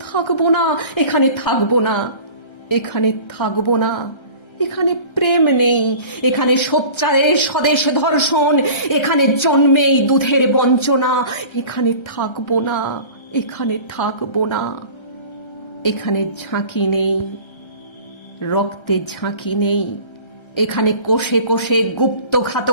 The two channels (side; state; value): right; late; 1.3 ms